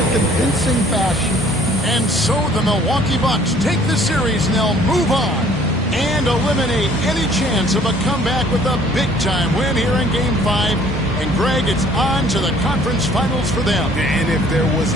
convincing fashion. And so the Milwaukee Bucks take the series and they'll move on and eliminate any chance of a comeback with a big-time win here in Game 5. And, Greg, it's on to the conference finals for them. And if there was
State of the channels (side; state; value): both; normal; correlation 0.57